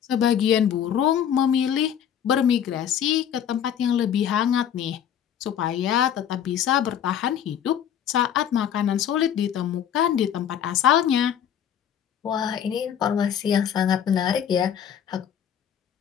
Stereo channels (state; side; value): quieter; right; 9.3 dB